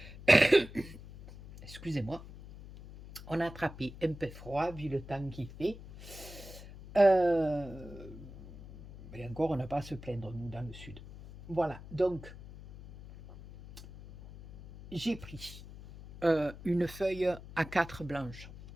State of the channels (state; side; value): noise; left; hum, 15 dB below the sound